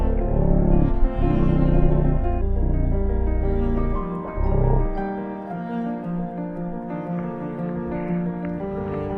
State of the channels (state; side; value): identical; both; correlation 1.00